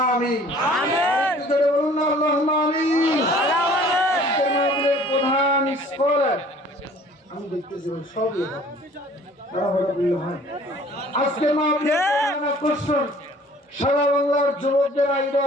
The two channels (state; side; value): normal; both; correlation 0.52